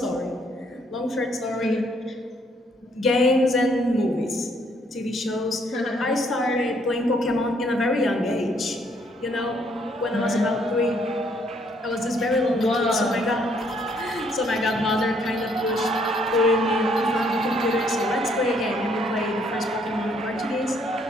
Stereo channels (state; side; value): normal; both; correlation 0.67